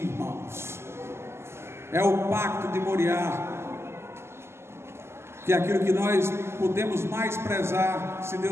É o pacto de Moriá, que é aquilo que nós podemos mais prezar, se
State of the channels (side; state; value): left; late; 0.12 ms